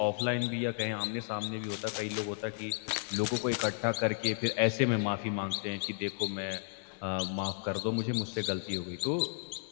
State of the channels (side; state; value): right; silent; 56 dB below the other